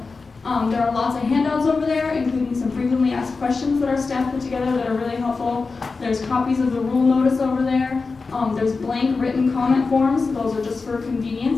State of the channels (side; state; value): right; quieter; 4.2 dB